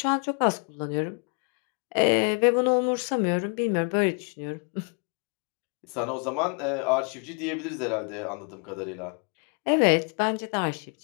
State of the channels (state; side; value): quieter; right; 38.3 dB